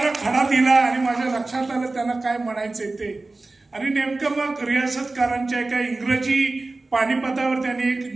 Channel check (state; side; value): quieter; left; 3.3 dB